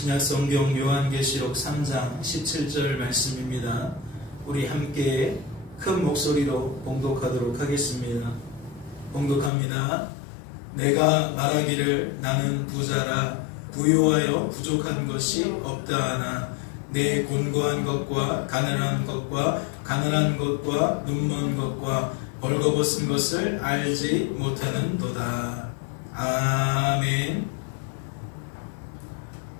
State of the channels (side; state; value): right; drops out; at 9.5 s